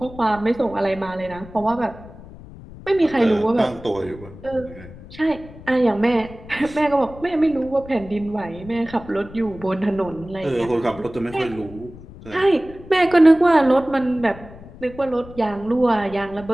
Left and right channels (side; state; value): left; noise; rumble, 17 dB below the sound